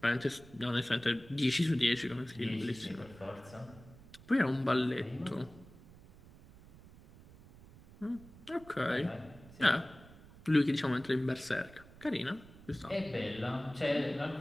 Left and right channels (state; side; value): noise; right; rumble, 21 dB below the sound